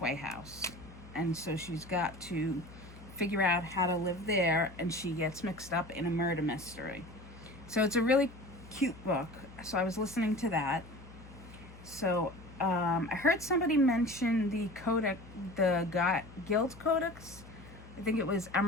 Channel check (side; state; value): left; noise; hum, 18 dB below the sound